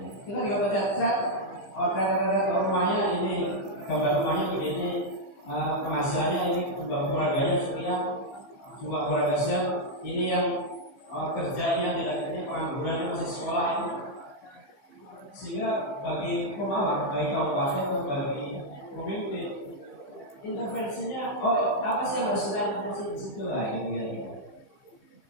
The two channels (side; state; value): right; late; 15 ms